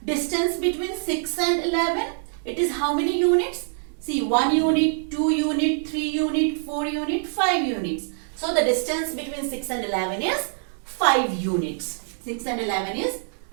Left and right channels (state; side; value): silent; left; digital silence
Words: distance between 6 and 11? It is how many units? See, 1 unit, 2 unit, 3 unit, 4 unit, 5 units. So the distance between 6 and 11 is 5 units. 6 and 11 is